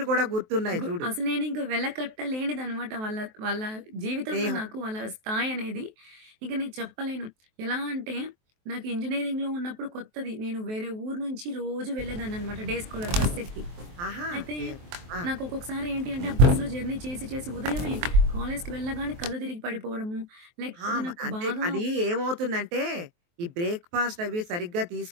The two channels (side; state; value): left; late; 23 ms